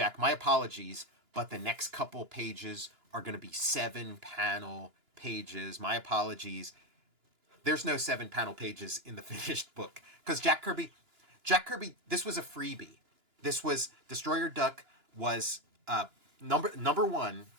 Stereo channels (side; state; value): left; late; 2.9 ms